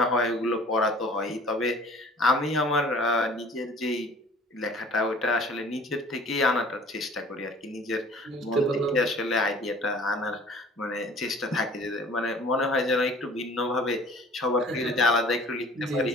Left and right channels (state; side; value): normal; both; correlation 0.49